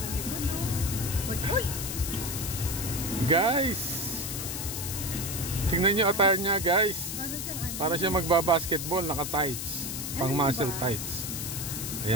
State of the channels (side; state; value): left; noise; hiss, 5 dB below the sound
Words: Uy! Guys, tingnan nyo attire niya, guys. Para siya magbabasketball, naka-tights. Pang muscle tights.